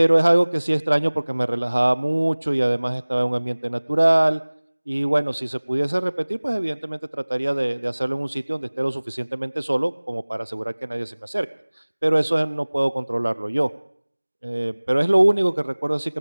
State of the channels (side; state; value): both; inverted; correlation -1.00